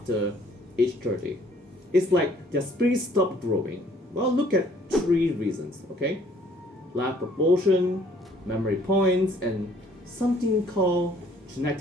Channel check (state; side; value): normal; both; correlation 0.60